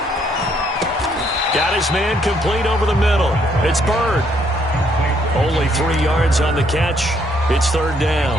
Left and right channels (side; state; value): both; normal; correlation 0.70